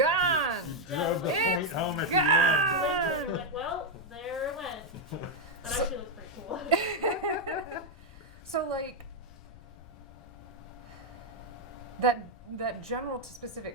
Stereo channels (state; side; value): noise; left; rumble, 20 dB below the sound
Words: drove the It's point home at gone! You're like, well, there it went. That So- actually looks pretty cool. So, like, that general to